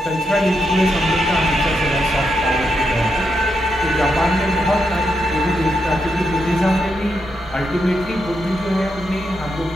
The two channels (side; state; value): both; normal; correlation 0.82